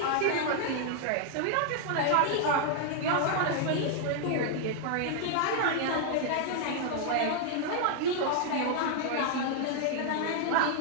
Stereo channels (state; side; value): different; both; correlation 0.00